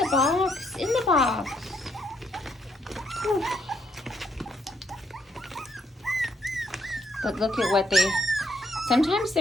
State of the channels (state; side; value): normal; both; correlation 0.73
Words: box, in the box. Whew. But look at what they, sometimes